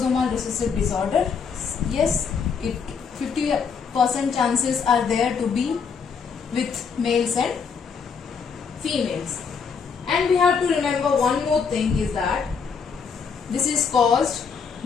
recessive disorder. Yes, 50% chances are there to be with males and females. And we have to remember one more thing, is that this is caused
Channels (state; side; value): quieter; right; 6.0 dB